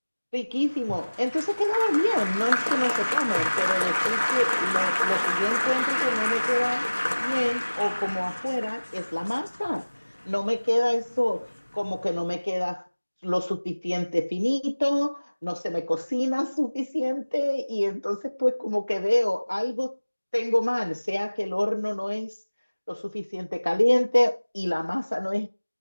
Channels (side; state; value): both; inverted; correlation -1.00